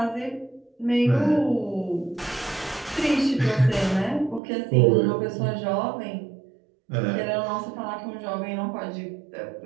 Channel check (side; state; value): left; drops out; at 4.4 s